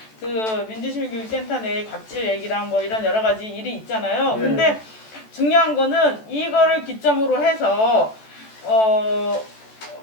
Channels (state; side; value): late; right; 14 ms